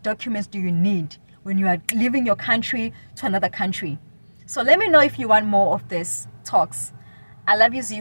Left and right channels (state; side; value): inverted; both; correlation -1.00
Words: documents do you need when you are leaving your country to another country? So let me know if you want more of this talks. I love you,